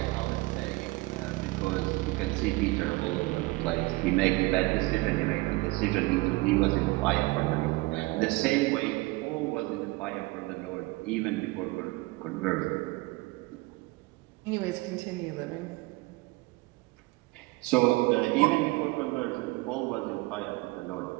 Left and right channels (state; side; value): quieter; left; 22.3 dB